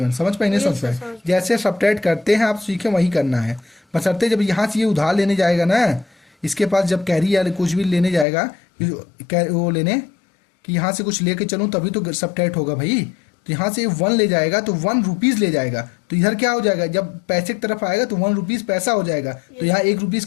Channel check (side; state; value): right; drops out; at 8.2 s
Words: समझ पाए नहीं समझ पाए? जैसे सब्ट्रैक्ट करते हैं आप सीखे वही करना है, बशर्ते जब यहाँ से ये उधार लेने जाएगा ना, इसके पास जब कैरी या कुछ भी लेने जाएगा वो लेने कि यहाँ से कुछ लेके चलूँ तभी तो सब्ट्रैक्ट होगा भाई। तो यहाँ से 1 ले जाएगा तो 1 रुपीज़ ले जाएगा, तो इधर क्या हो जाएगा जब पैसे की तरफ आएगा तो 1 रुपीज़ पैसा हो जाएगा, तो यहाँ 1 रुपीज़